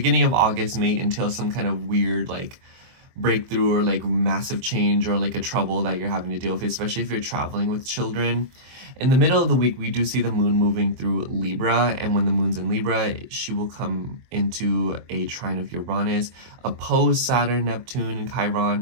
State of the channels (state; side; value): late; left; 23 ms